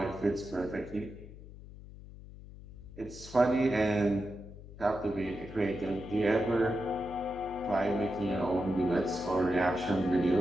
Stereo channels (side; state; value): left; noise; hum, 16 dB below the sound